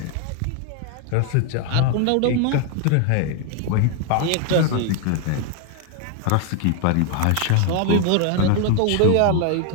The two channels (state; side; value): different; both; correlation 0.00